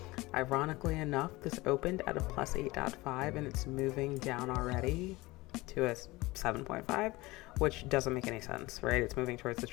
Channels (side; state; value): right; quieter; 20.9 dB